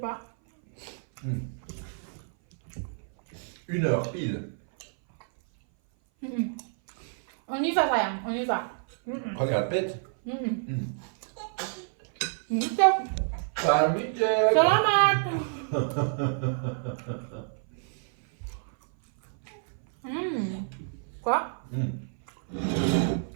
1h pile. On y va sayang, on y va. Regarde, pète. Salut, Jack. Selamat. Quoi?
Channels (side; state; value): left; silent; 57 dB below the other